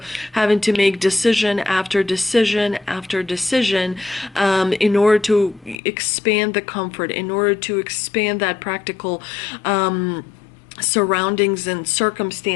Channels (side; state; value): right; drops out; at 5.8 s